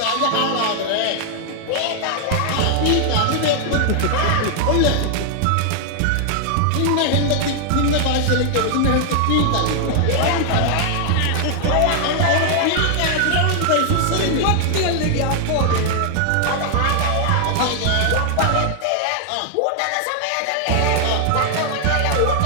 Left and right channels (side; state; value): both; different; correlation 0.00